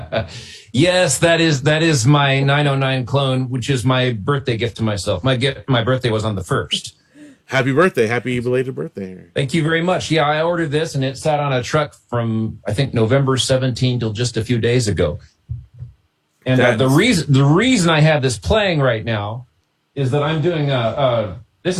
Yes, that is my 909 clone, which is my birthday gift to myself. My birthday was on the 1st. Happy birthday. Happy belated birthday. Thank you very much. Yeah, I ordered this and it sat on a truck from, I think, November 17 till just a few days ago. And the reason I have this playing right now is that I'm doing this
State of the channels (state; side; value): identical; both; correlation 1.00